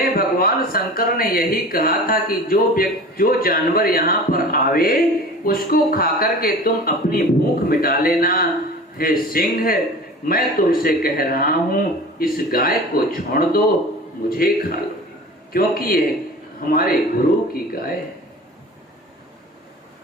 भगवान शंकर ने यही कहा था कि जो जानवर यहाँ पर आवे उसको खाकर के तुम अपनी भूख मिटा लेना, हे सिंह, मैं तुमसे कह रहा हूं, इस गाय को छोड़ दो, मुझे खा लो, क्योंकि ये हमारे गुरु की गाय है।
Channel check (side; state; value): both; normal; correlation 0.38